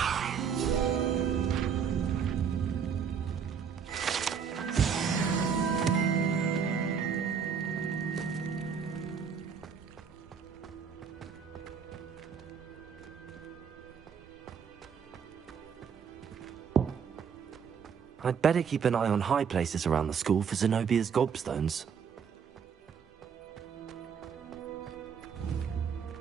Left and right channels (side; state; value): left; quieter; 6.8 dB